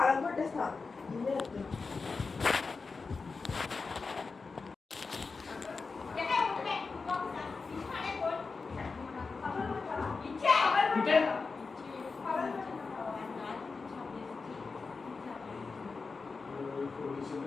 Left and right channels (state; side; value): quieter; right; 4.5 dB